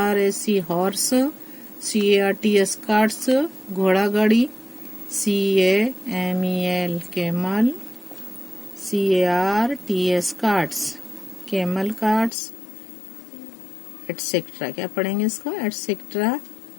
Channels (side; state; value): right; drops out; at 12.3 s